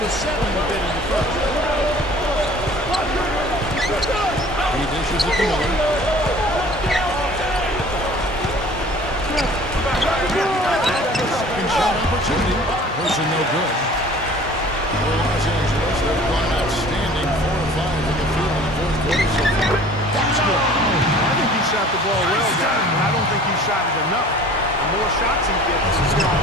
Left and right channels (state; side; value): normal; both; correlation 0.48